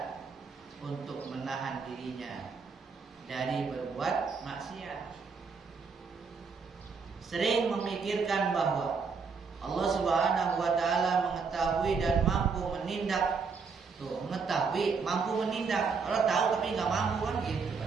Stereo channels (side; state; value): left; quieter; 5.2 dB